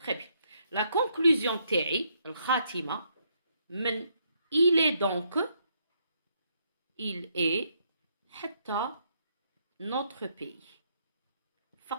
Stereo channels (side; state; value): both; inverted; correlation -0.74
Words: très bien. La conclusion تاعي الخاتمه من il est donc il est حتى notre pays